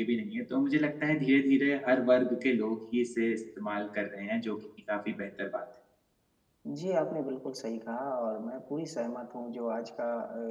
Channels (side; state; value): both; identical; correlation 1.00